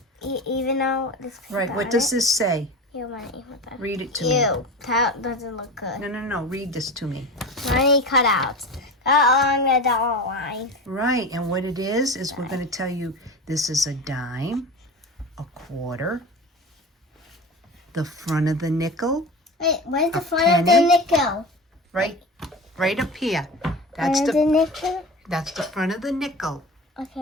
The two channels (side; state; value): both; normal; correlation 0.30